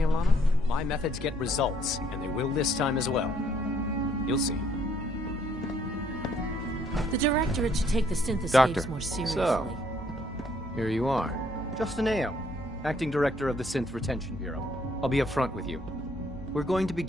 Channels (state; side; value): normal; both; correlation 0.66